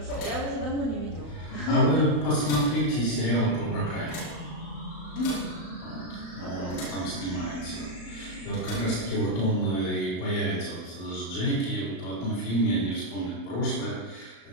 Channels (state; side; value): late; right; 35 ms